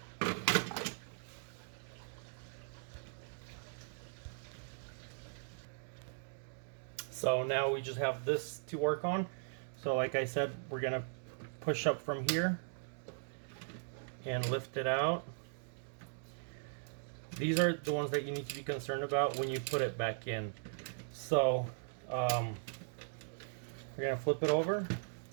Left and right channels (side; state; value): left; silent; digital silence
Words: So now we just have this to work on. So like I said, we're gonna push up from here and lift it out. These are the ones that you need to be concerned about when you put it back in. So we're gonna flip it over